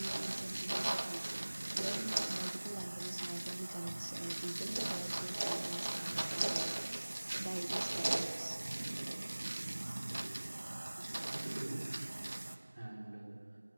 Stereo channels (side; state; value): both; inverted; correlation -1.00